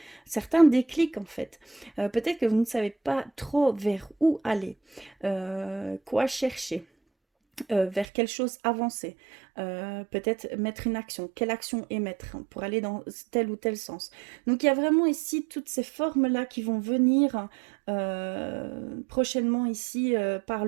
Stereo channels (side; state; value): left; drops out; at 8.1 s